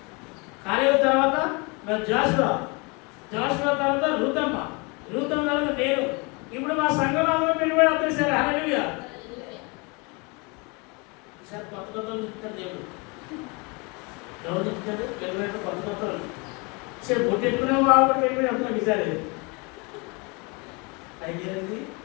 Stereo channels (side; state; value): right; quieter; 29.5 dB